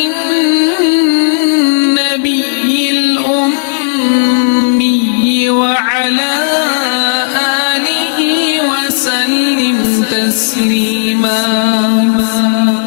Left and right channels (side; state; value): right; silent; digital silence